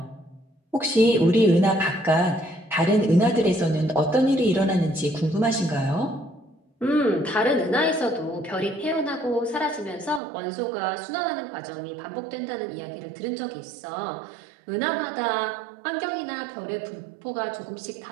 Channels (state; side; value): drops out; left; at 10.2 s